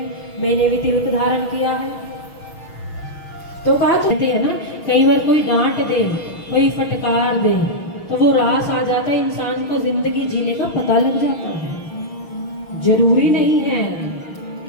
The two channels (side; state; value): right; late; 6.3 ms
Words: मैंने भी तिलक धारण किया है। तो कहा, कहते हैं ना, कई बार कोई डांट दे, कोई फटकार दे, तो वो रास आ जाता है, इंसान को जिंदगी जीने का पता लग जाता है। जरूरी नहीं है